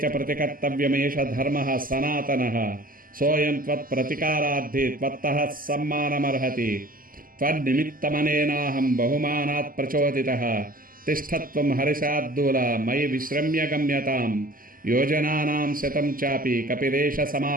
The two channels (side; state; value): left; late; 0.41 ms